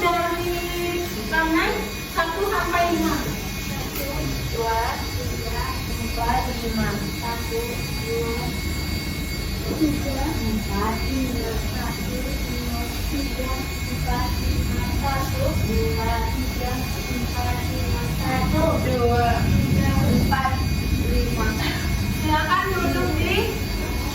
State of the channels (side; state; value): both; identical; correlation 1.00